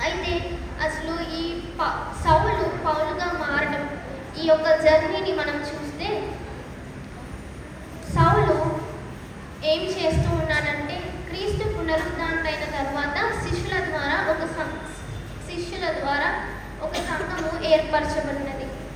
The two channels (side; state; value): both; identical; correlation 1.00